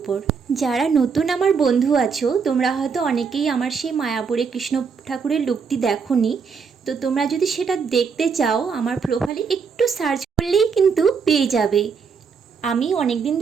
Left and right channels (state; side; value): quieter; left; 5.8 dB